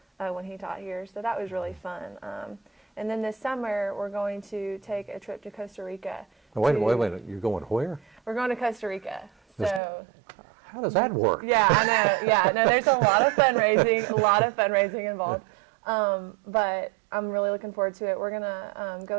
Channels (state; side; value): drops out; left; at 9.8 s